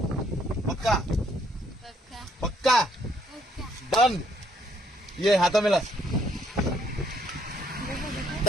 पक्का पक्का पक्का डन ये हाथ मिला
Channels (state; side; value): normal; both; correlation 0.68